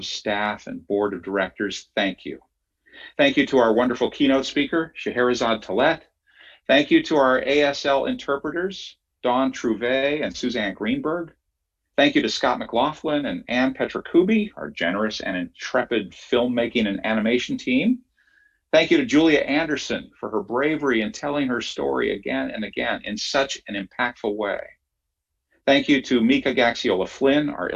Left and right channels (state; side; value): identical; both; correlation 1.00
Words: staff and board of directors, thank you. Thank you to our wonderful keynote speaker, Scheherazade Talet. Thank you to our ASL interpreters, Dawn Trouvé and Suzanne Greenberg. Thank you to Scott McLaughlin and Ann Petrakubi, our generous and intrepid filmmaking and animation team. Thank you to Julia Anderson for her bravery in telling her story again and again in such an impactful way. Thank you to Mika Gaxiola Flynn, our